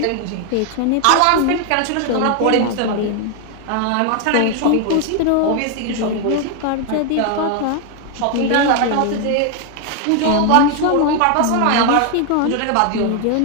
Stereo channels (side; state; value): both; different; correlation 0.01